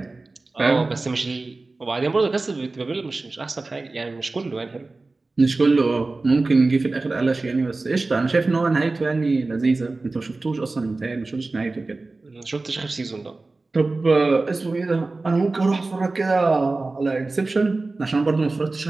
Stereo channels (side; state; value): left; quieter; 3.4 dB